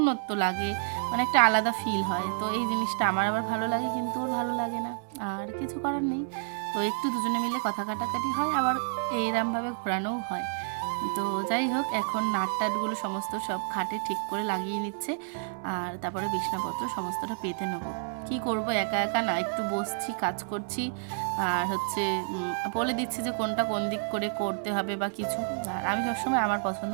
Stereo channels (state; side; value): silent; left; digital silence